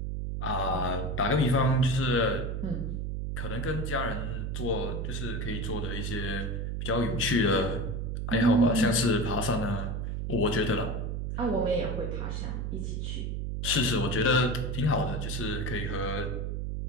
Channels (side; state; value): right; noise; hum, 2 dB below the sound